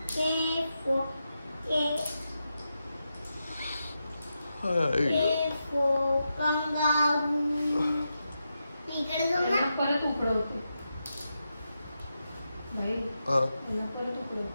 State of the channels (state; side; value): inverted; both; correlation -0.88